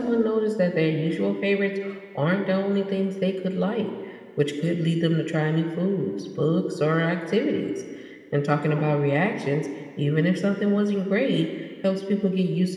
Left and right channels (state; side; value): identical; both; correlation 1.00